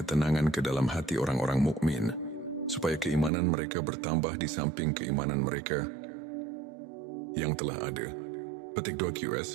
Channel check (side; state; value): left; drops out; at 3.3 s